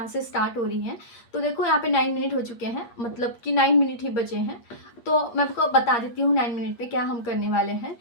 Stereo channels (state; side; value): late; right; 8.5 ms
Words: से स्टार्ट हो रही है तो देखो यहाँ पे 9 मिनट हो चुके हैं, मतलब कि 9 मिनट ही बचे हैं। तो मैं आपको बता देती हूँ 9 मिनट पे क्या हम करने वाले हैं।